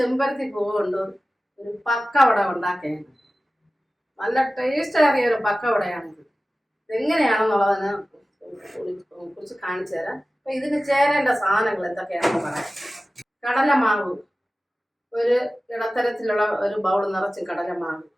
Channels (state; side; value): normal; both; correlation 0.96